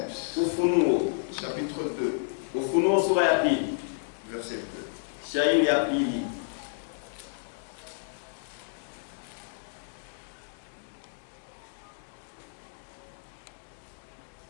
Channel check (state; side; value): silent; right; digital silence